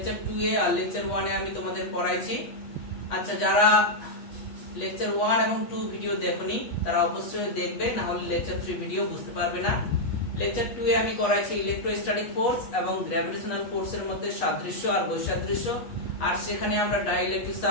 2 এ আর লেকচার 1 এ আমি তোমাদের পড়াইছি। আচ্ছা, যারা লেকচার 1 এবং 2 ভিডিও দেখোনি তারা অবশ্যই দেখবে, না হলে লেকচার 3 ভিডিও বুঝতে পারবে না। লেকচার 2 এ আমি করাইছি ইলেকট্রোস্ট্যাটিক ফোর্স এবং গ্র্যাভিটেশনাল ফোর্সের মধ্যে সাদৃশ্য আর বৈসাদৃশ্য, আর সেখানে আমরা ডাইইলেকট্রিক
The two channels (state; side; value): late; right; 8.3 ms